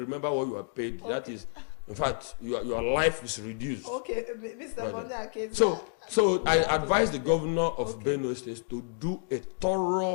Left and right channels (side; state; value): right; silent; digital silence